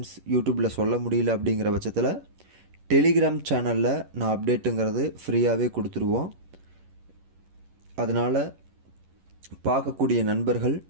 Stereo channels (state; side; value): late; left; 11 ms